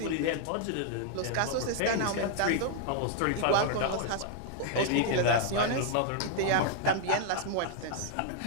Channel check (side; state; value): both; different; correlation 0.00